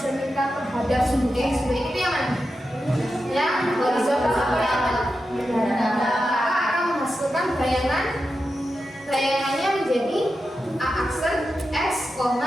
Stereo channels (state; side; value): normal; both; correlation 0.90